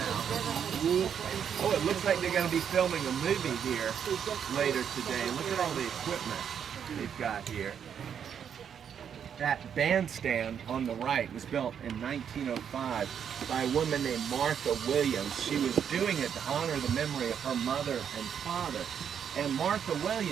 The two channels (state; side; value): quieter; left; 8.1 dB